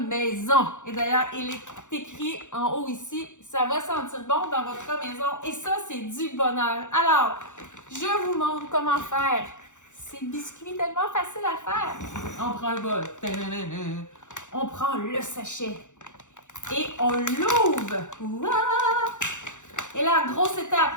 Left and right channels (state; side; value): late; right; 0.85 ms